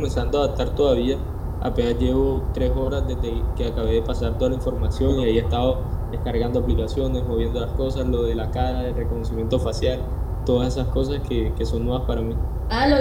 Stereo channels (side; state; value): both; identical; correlation 1.00